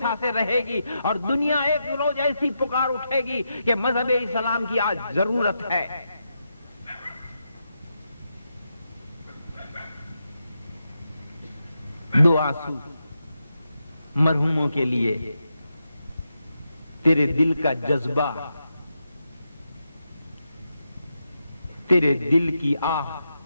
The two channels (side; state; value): both; inverted; correlation -0.85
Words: سے رہے گی، اور دنیا ایک روز ایسی پکار اٹھے گی کہ مذہب اسلام کی آج ضرورت ہے۔ دو آنسو مرحوموں کے لیے، تیرے دل کا جذبہ، تیرے دل کی آہ